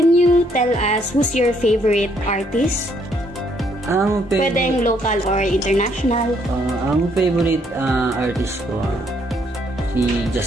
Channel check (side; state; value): both; normal; correlation 0.69